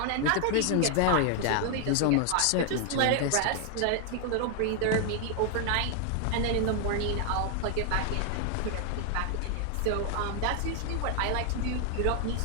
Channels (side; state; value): both; different; correlation 0.00